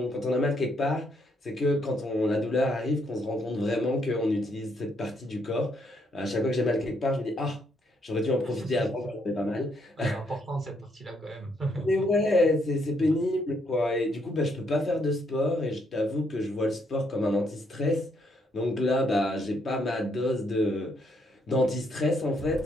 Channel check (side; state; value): both; normal; correlation 0.73